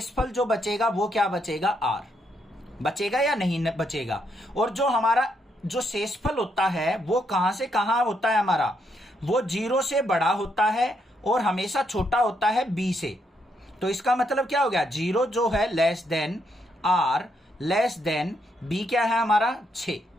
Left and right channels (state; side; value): normal; both; correlation 0.76